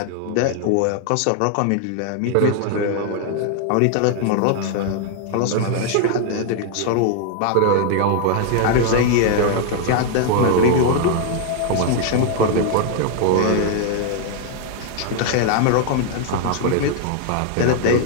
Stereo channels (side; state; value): both; different; correlation 0.00